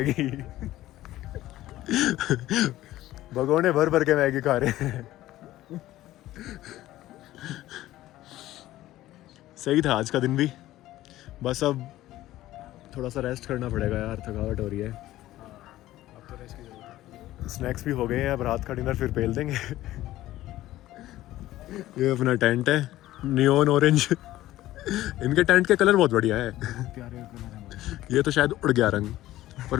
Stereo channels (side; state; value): right; quieter; 15.2 dB